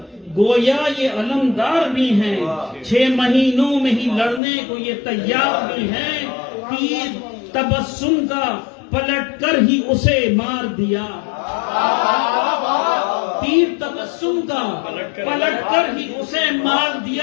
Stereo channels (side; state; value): right; drops out; at 4.4 s